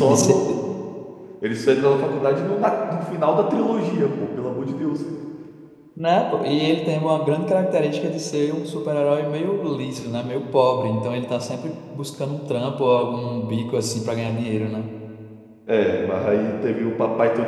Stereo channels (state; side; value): identical; both; correlation 1.00